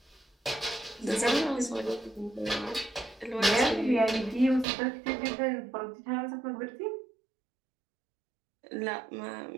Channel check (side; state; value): left; drops out; at 4.7 s